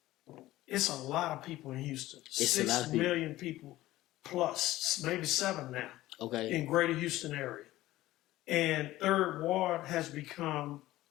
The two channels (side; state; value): right; quieter; 16.2 dB